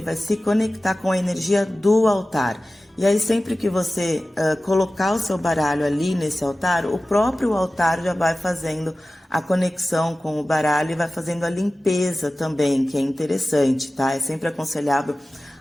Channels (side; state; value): both; normal; correlation 0.96